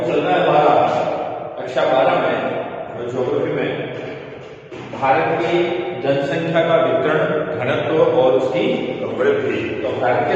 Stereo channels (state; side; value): identical; both; correlation 1.00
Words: चल रहा है हमारा कक्षा 12 में ज्योग्राफी में भारत की जनसंख्या का वितरण, घनत्व और उसकी वृद्धि। तो भारत